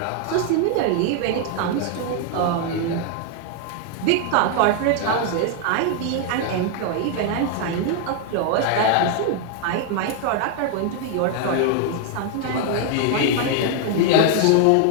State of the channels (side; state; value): both; different; correlation 0.00